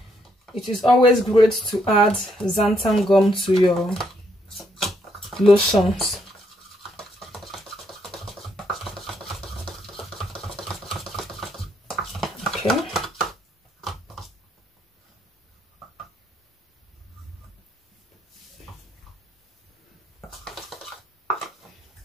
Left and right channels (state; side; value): normal; both; correlation 0.73